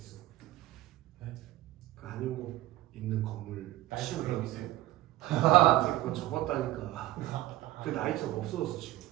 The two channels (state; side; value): quieter; left; 16.3 dB